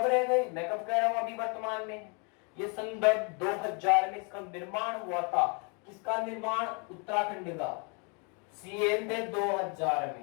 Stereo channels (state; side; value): quieter; right; 34.5 dB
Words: रह गए? मैं कब कह रहा हूं? अभी वर्तमान में। ये सन 2000 में इसका निर्माण हुआ था। किसका निर्माण? उत्तराखंड का। सीएम थे 2000 में।